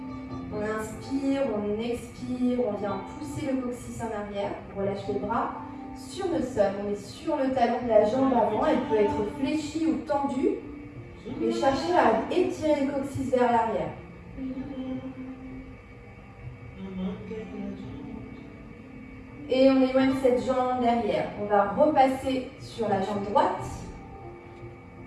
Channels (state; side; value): identical; both; correlation 1.00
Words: On inspire, on expire, on vient pousser le coccyx en arrière, on relâche les bras sur le sol, on est sur le talon de la jambe avant, elle peut être fléchie ou tendue, et chercher à étirer le coccyx vers l'arrière. Et on éloigne cette jambe derrière. On va repasser sur la jambe droite.